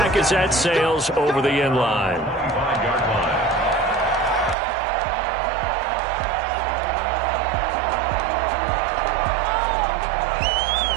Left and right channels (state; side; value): drops out; left; at 4.5 s